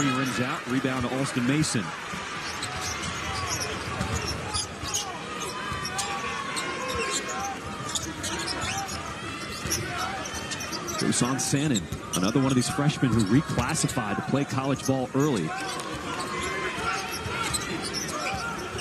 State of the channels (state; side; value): identical; both; correlation 1.00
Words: rims out. Rebound to Alston Mason. Dusan Sannon, another one of these freshmen who reclassified to play college ball early.